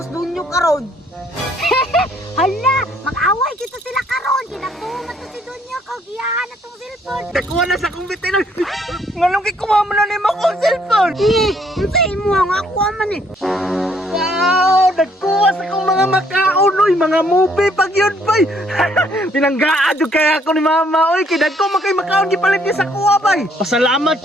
dunyo karon. Hala, mag-away kita sila karon. Kinatumat to si Dunyo kag giyahan na tong cellphone. Nakuha na sa kong bitin. Ngalong kay kumama na ni mo akong cellphone. Unsay mo ang ako man eh. Wow! Nagkuha sa kong mga makaon, oy, mga movie pag yun, bay. Pinanggaan yung kaya ako ni mama, oy. Kinag ko makay makaon, gipalit niya sa kuha, bay. Pasalamat,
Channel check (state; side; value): normal; both; correlation 0.66